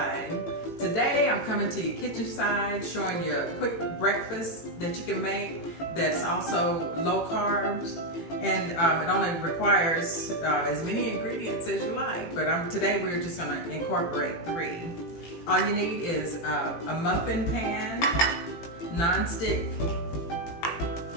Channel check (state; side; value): late; right; 18 ms